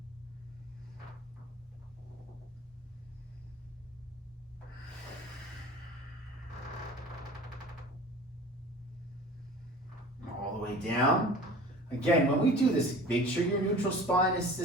All the way down. Again, when we do this, make sure your neutral spine is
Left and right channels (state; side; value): normal; both; correlation 0.42